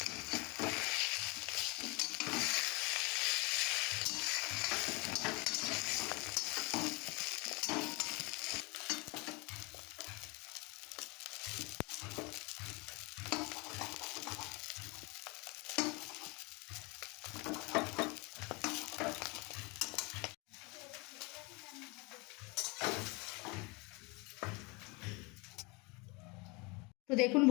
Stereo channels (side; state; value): right; quieter; 27.8 dB